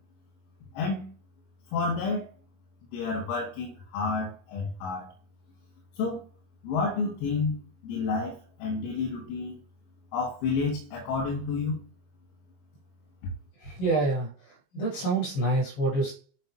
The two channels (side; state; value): right; late; 22 ms